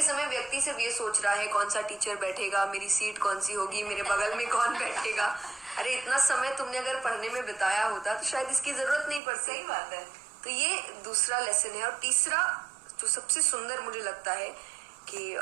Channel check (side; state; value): left; drops out; at 9.2 s